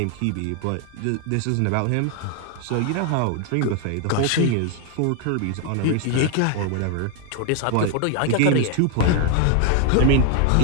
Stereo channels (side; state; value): both; different; correlation 0.00